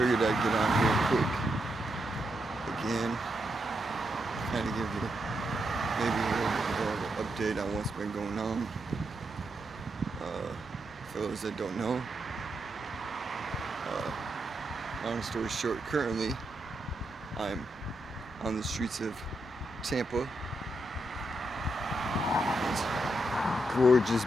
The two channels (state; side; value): normal; both; correlation 0.83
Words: figured I'd get on here quick again, kind of give you maybe a little bit of an update on what's been going on. For those that don't know, long story short, currently I'm on the streets of Tampa. It's a gorgeous,